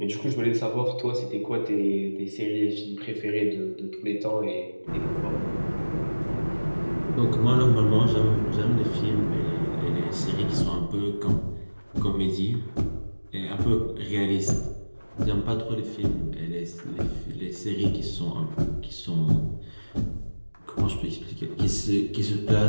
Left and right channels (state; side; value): inverted; both; correlation -1.00